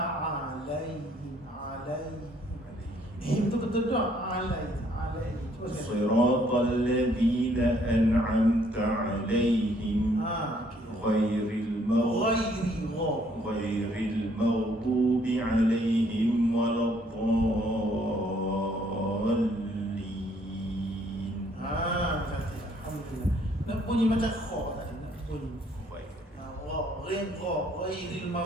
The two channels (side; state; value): both; normal; correlation 0.65